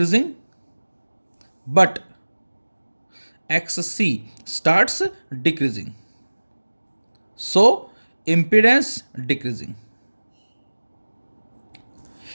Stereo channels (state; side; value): inverted; both; correlation -1.00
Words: but XC starts decreasing, so impedance decreasing.